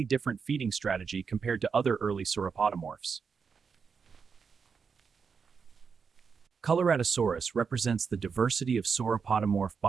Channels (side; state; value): left; quieter; 5.8 dB